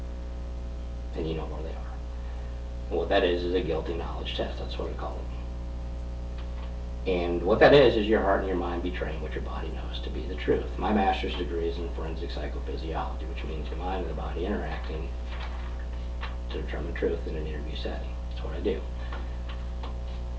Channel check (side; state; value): both; identical; correlation 1.00